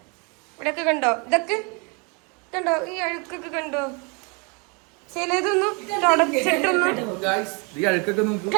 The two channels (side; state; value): left; quieter; 32.3 dB